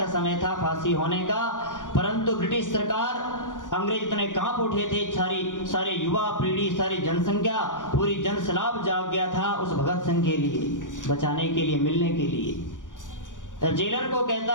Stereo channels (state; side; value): late; right; 0.87 ms